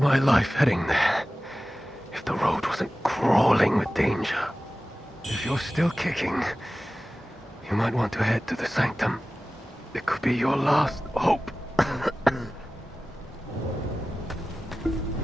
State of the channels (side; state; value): both; normal; correlation 0.96